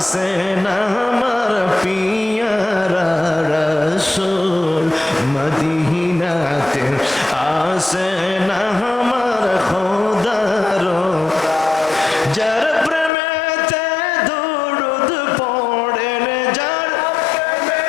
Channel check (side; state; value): right; drops out; at 13.1 s